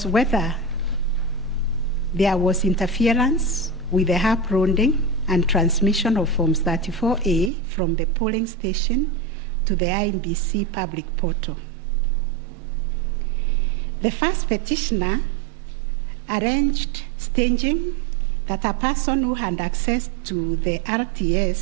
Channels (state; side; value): drops out; left; at 7.5 s